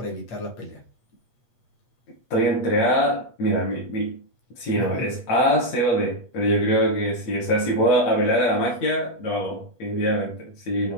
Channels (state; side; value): late; right; 8.3 ms